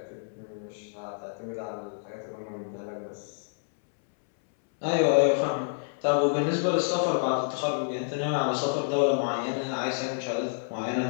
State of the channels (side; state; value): right; silent; 59 dB below the other